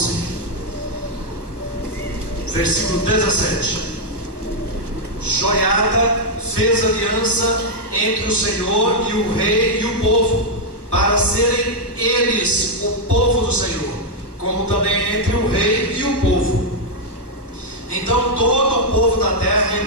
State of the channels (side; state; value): right; late; 1.2 ms